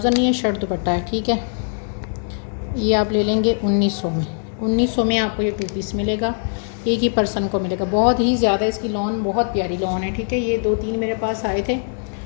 नहीं है, शर्ट दुपट्टा है, ठीक है। ये आप ले लेंगे 1900 में। 1900 में आपको ये 2 पीस मिलेगा, एक ही पर्सन को मिलेगा। बहुत ही ज़्यादा इसकी लॉन, बहुत प्यारी लॉन है, ठीक है। ये 2-3 मेरे पास आए थे।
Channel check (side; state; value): right; silent; digital silence